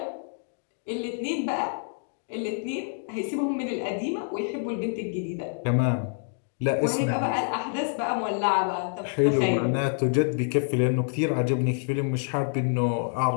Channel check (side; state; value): right; silent; digital silence